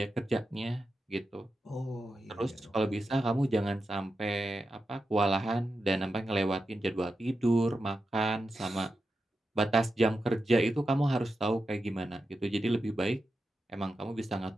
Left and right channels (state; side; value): normal; both; correlation 0.89